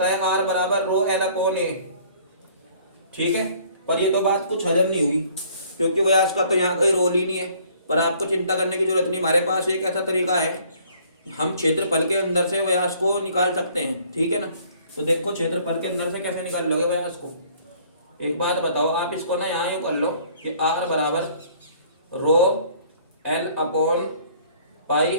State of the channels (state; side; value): inverted; both; correlation -0.57